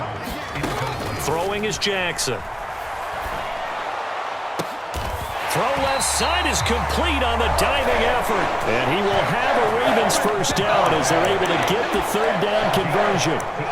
Throwing is Jackson. Throw left side is complete on the diving effort. And he will have a Ravens first down as they're able to get the third down conversion.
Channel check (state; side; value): identical; both; correlation 1.00